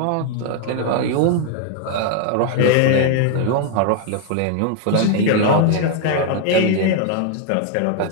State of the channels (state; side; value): different; both; correlation 0.01